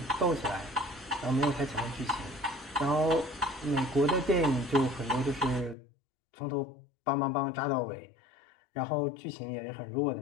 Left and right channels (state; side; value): drops out; right; at 5.8 s